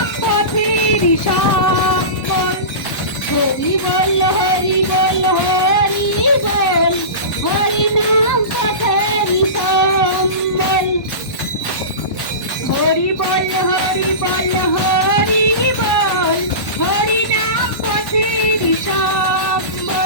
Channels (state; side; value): late; right; 1.1 ms